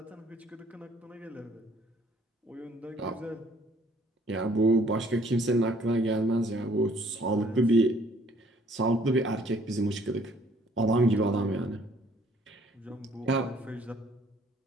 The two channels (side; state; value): both; normal; correlation 0.61